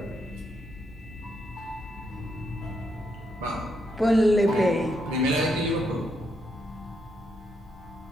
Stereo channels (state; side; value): normal; both; correlation 0.79